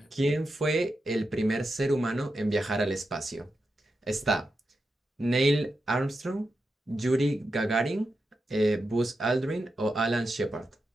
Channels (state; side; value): normal; both; correlation 0.88